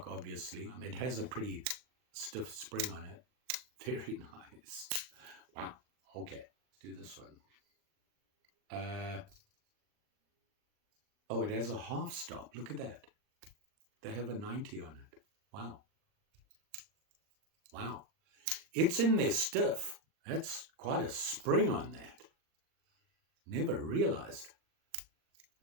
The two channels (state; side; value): late; left; 39 ms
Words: obviously. It has a pretty stiff spring on it. Very nice. Wow. Okay, let's do this one. Oh, it has a half stop. Look at that. They have a 90 on it. Wow. Wow. It's in there stiff. That's quite a spring on that. Never realized.